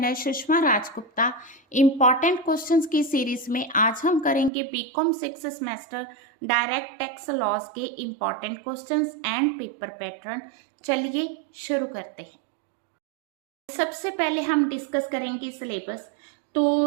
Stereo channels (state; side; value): drops out; left; at 4.5 s